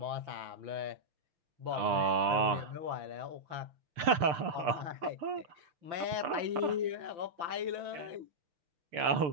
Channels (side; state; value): left; late; 6.8 ms